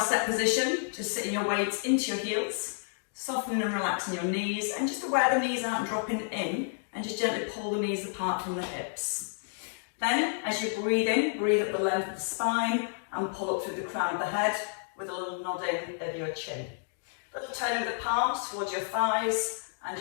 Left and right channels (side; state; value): right; silent; digital silence